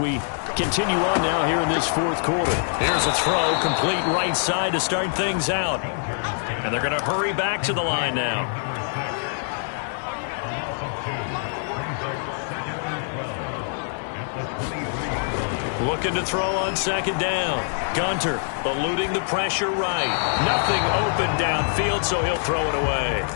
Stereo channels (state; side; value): silent; right; digital silence